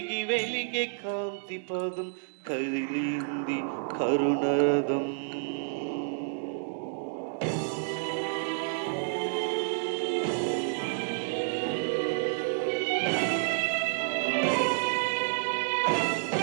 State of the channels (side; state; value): left; silent; digital silence